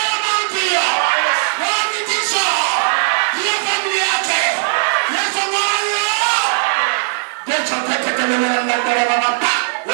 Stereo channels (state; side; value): silent; left; digital silence